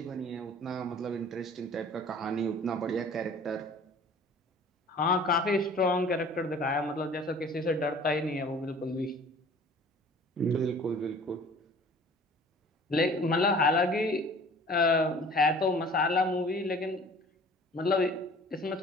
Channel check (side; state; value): both; normal; correlation 0.48